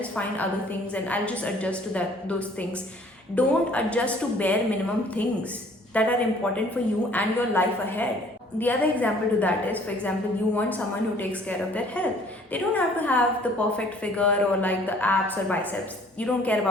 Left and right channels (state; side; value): normal; both; correlation 0.56